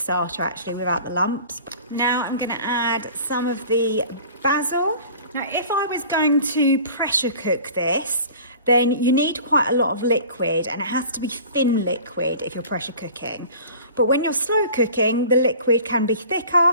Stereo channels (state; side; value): inverted; both; correlation -0.43